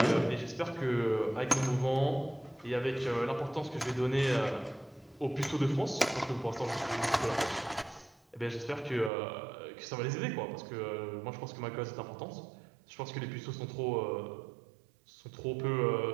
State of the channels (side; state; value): left; drops out; at 9.1 s